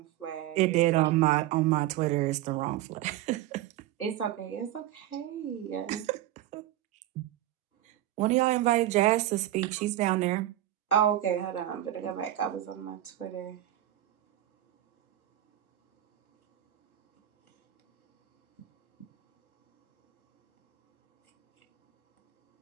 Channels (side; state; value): left; quieter; 13.6 dB